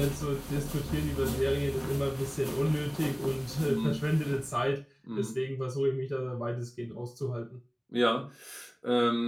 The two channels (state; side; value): identical; both; correlation 1.00